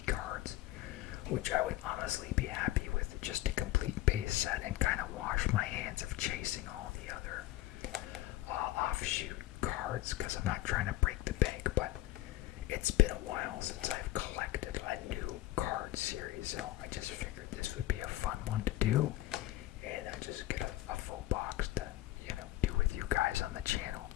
cards, which I would honestly be happy with, just a complete base set, and kind of wash my hands of chasing all the other offshoot cards, because I'm not trying to break the bank. But it's been a while since I've collected a new card series, so I just figured this would be a fun one to do, and just get a full box to, do with you guys on the channel,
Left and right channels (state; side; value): quieter; right; 15.6 dB